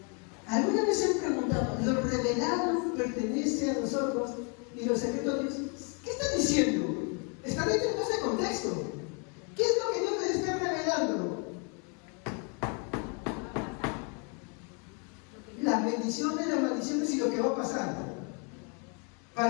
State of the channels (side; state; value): right; quieter; 36.5 dB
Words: ¿Alguna vez se han preguntado, lo revelado pertenece a nosotros y los secretos de Dios? ¿Qué está diciendo? Está dentro de ese contexto. ¿Qué es lo que Dios les está revelando? Las bendiciones, las maldiciones y lo que va a pasar.